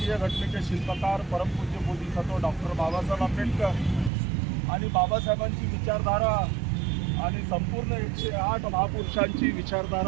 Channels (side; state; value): left; drops out; at 4.1 s